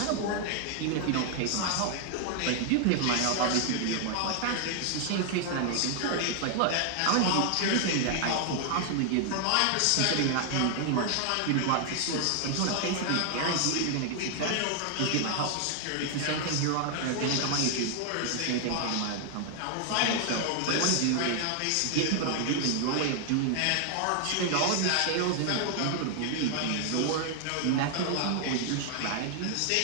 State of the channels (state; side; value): different; both; correlation 0.00